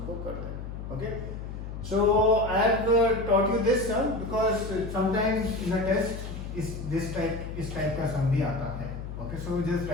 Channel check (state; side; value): noise; left; hum, 8 dB below the sound